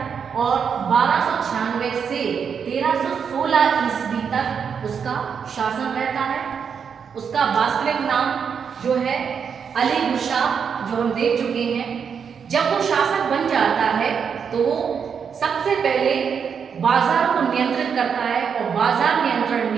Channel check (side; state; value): left; quieter; 6.8 dB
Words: और 1296 से 1316 ईस्वी तक उसका शासन रहता है। उसका वास्तविक नाम जो है अली गुरशाह, जो हम देख चुके हैं। जब वो शासक बन जाता है तो वो सबसे पहले बाजार को नियंत्रित करता है और बाजार नियंत्रण